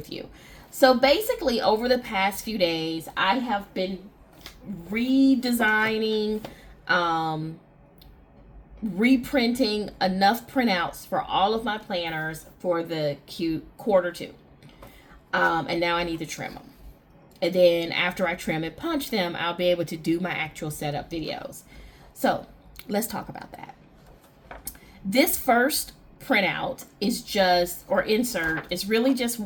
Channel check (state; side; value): identical; both; correlation 1.00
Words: you. So basically, over the past few days, I have been redesigning, reprinting enough printouts for all of my planners for the quarter two. And now I need to trim them. And then after I trim and punch them, I'll be able to do my actual setup videos. So let's talk about that. This first printout is insert is really just